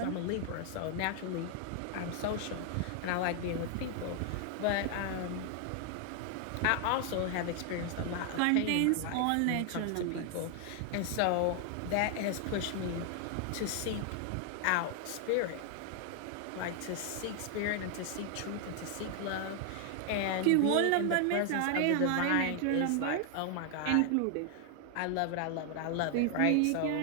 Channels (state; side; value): different; both; correlation 0.00